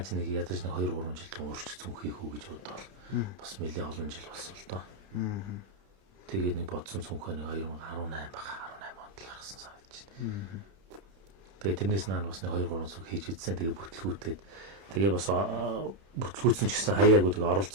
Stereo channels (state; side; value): late; left; 31 ms